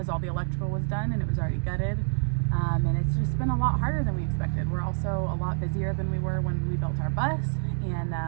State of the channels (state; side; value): silent; left; digital silence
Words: all the electrical was done and it was already gutted. And it's just been a lot harder than we expected. We're also a lot busier than we were when we built our bus. And